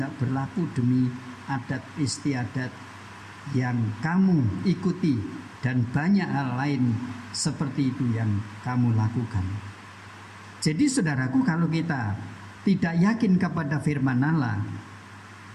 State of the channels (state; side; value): identical; both; correlation 1.00